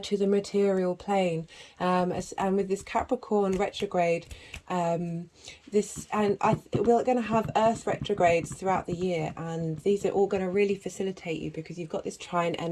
to the material plane, and with this Capricorn retrograde, we're going to have Earth retrogrades throughout the year, and these are all going to really facilitate you because you've got this trine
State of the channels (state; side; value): identical; both; correlation 1.00